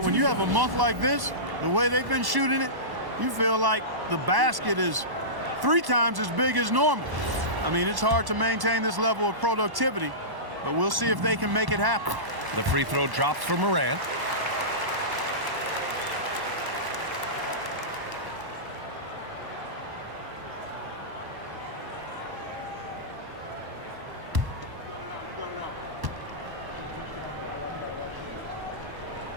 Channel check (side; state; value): left; late; 1.1 ms